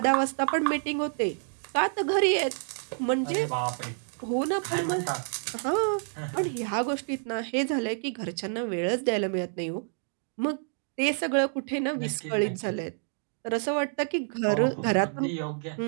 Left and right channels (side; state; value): left; silent; 59 dB below the other